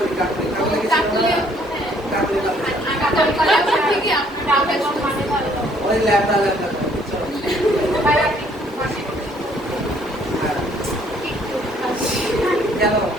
কাকুলি কাকুলি কাকুলি ওই ল্যামডা ল্যামডা কেন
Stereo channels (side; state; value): both; normal; correlation 0.63